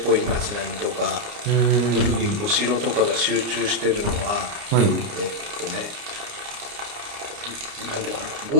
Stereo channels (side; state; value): left; late; 29 ms